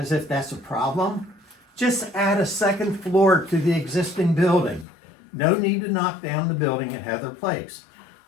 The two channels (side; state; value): right; drops out; at 4.9 s